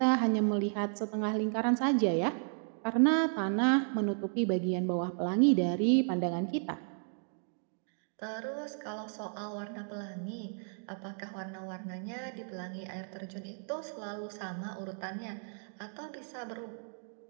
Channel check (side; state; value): left; silent; 55 dB below the other